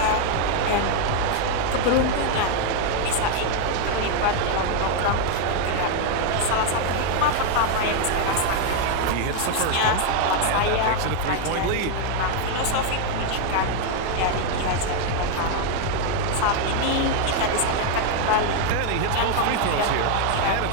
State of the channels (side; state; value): both; different; correlation 0.00